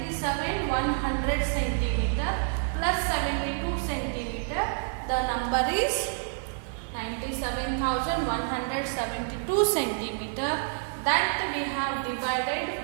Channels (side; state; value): left; silent; digital silence